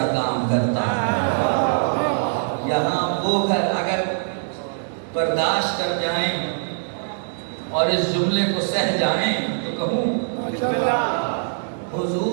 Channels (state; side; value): silent; left; digital silence